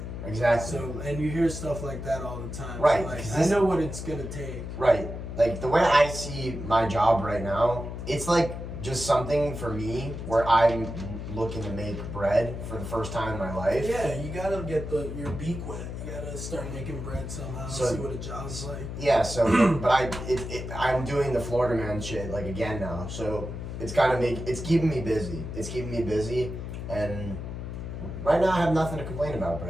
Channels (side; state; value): left; noise; hum, 7 dB below the sound